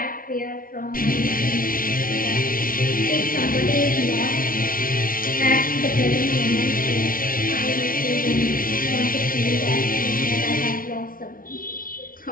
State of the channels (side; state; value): right; late; 0.41 ms